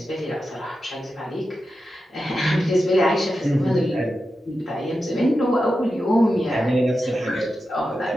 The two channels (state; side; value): normal; both; correlation 0.90